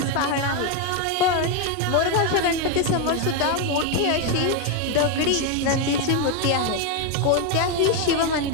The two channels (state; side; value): different; both; correlation 0.02